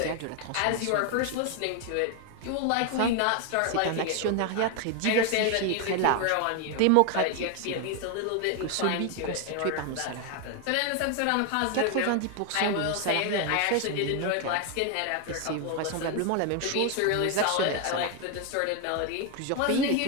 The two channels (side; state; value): both; different; correlation 0.01